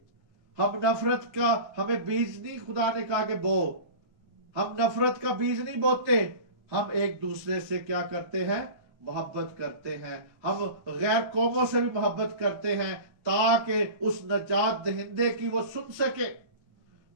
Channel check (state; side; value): late; left; 1.3 ms